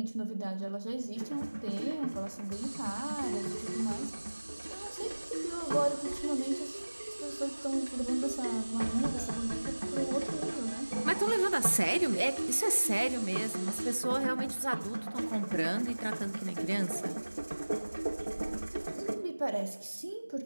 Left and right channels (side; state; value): both; inverted; correlation -1.00